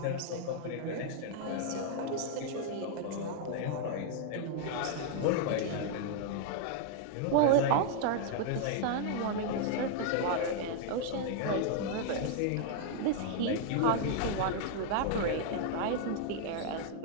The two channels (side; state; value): both; different; correlation -0.01